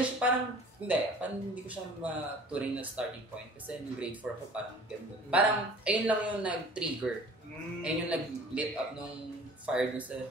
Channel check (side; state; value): both; normal; correlation 0.47